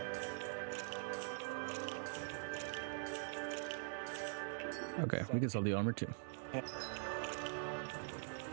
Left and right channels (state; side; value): silent; left; digital silence